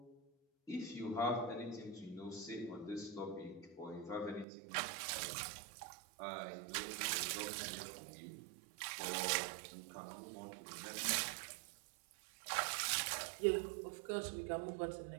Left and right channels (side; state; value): left; drops out; at 4.5 s